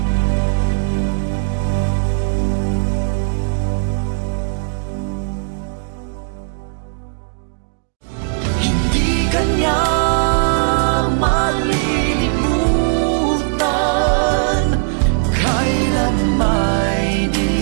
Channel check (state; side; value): silent; left; digital silence